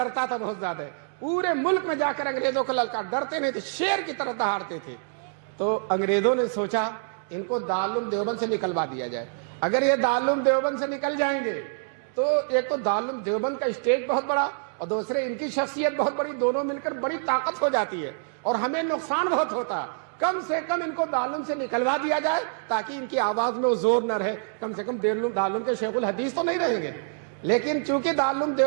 تھا بہت زیادہ, پورے ملک میں جا کر انگریزوں کو للکار, ڈرتے نہیں تھے, شیر کی طرح دہاڑتے تھے. تو انگریزوں نے سوچا ان کو دارالعلوم دیوبند سے نکلوا دیا جائے. اگر یہ دارالعلوم دیوبند سے نکل جائیں گے تو ایک تو دارالعلوم دیوبند کا اسٹیج بہت بڑا اور دوسرے ان کی شخصیت بہت بڑی, دونوں مل کر بڑی طاقت ہو جاتی ہے اور ہمیں نقصان بہت ہوتا. کم سے کم ان کو دارالعلوم سے نکلوا دیا جائے تاکہ ان کی آواز میں وہ زور نہ رہے. کم سے کم دارالعلوم کے شیخ الحدیث تو نہیں رہیں گے. لیکن چونکہ دارالعلوم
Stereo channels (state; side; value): silent; left; digital silence